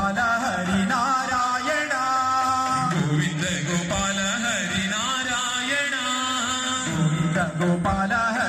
ಹರಿನಾರಾಯಣ. ಗೋವಿಂದ ಗೋಪಾಲ ಹರಿನಾರಾಯಣ. ಗೋವಿಂದ ಗೋಪಾಲ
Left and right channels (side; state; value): both; identical; correlation 1.00